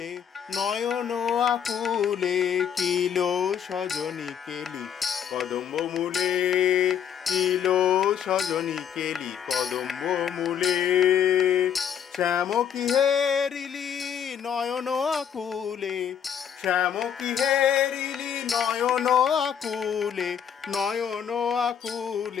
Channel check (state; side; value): quieter; right; 8.5 dB